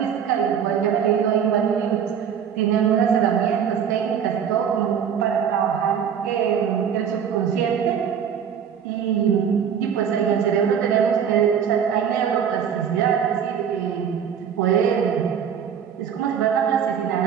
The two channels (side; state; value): left; quieter; 8.0 dB